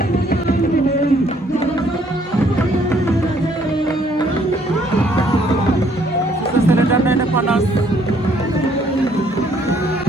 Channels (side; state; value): both; normal; correlation 0.65